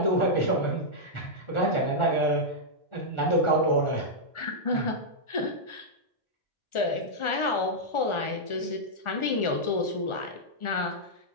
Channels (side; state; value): right; late; 1.4 ms